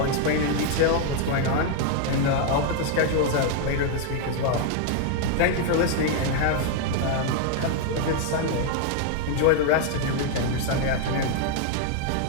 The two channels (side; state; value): both; different; correlation 0.00